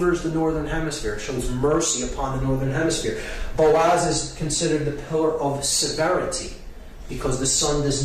the northern hemisphere. It shows mercy upon the northern hemisphere. Boaz is considered the pillar of severity, because the sun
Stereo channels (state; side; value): identical; both; correlation 1.00